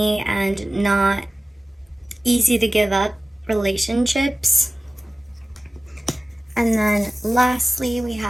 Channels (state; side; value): normal; both; correlation 0.97